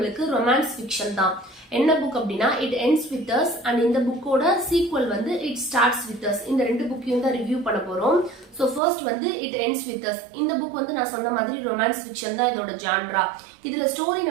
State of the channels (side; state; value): left; drops out; at 8.8 s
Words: ரொமான்ஸ் ஃபிக்ஷன் தான். என்ன புக் அப்படின்னா it ends with us and இந்த புக்கோட சீக்வல் வந்து இட் ஸ்டார்ட்ஸ் வித் அஸ். இந்த 2 புக்கையும் தான் ரிவ்யூ பண்ண போறோம். ஸோ ஃபர்ஸ்ட் வந்து இட் எண்ட்ஸ் வித் அஸ். இந்த புக் வந்து நான் சொன்ன மாதிரி ரொமான்ஸ் ஃபிக்ஷன் தான் இதோட ஜான்ரா. இதுல ஸ்டோரி